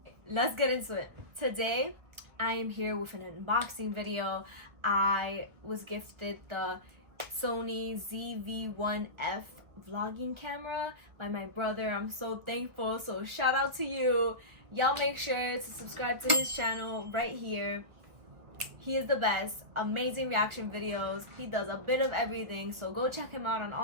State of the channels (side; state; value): left; late; 1.4 ms